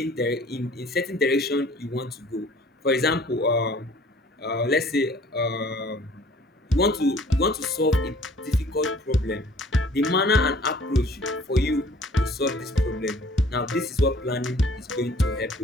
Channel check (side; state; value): both; normal; correlation 0.53